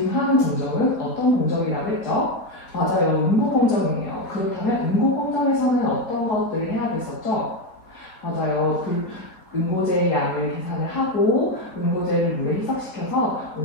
하는 공정은 어떤 공정이라고 했죠? 맞아요. 응고 공정이에요. 그렇다면 응고 공정에서는 어떤 것들을 해야 됐었죠? 맞아요. 응고제의 양을 계산을 하고 응고제를 물에 희석시켜서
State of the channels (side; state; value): right; late; 4.2 ms